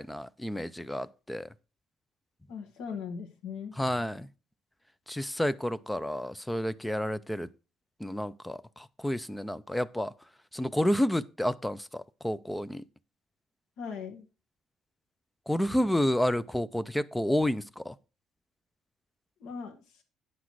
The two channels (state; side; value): normal; both; correlation 0.96